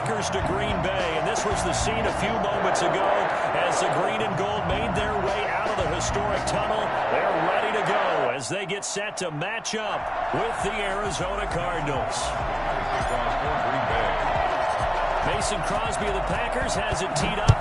to Green Bay, and this was the scene a few moments ago as the green and gold made their way out of the historic tunnel. They're ready to go as they get set to match up with the Arizona Cardinals. Mason Crosby of the Packers has it teed up,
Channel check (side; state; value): both; identical; correlation 1.00